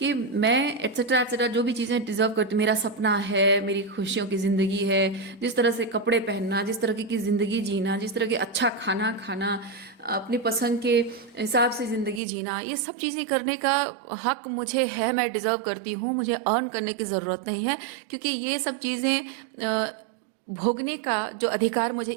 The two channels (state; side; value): drops out; left; at 12.2 s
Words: मैं एट्सेट्रा जो भी चीज़ें डिजर्व करती, मेरा सपना है, मेरी खुशियों की ज़िंदगी है, जिस तरह से कपड़े पहनना, जिस तरह की ज़िंदगी जीना, जिस तरह के अच्छा खाना खाना, अपनी पसंद के हिसाब से ज़िंदगी जीना, ये सब चीज़ें करने का हक मुझे है, मैं डिज़र्व करती हूँ, मुझे अर्न करने की ज़रूरत नहीं है, क्योंकि ये सब चीज़ें भोगने का जो अधिकार मुझे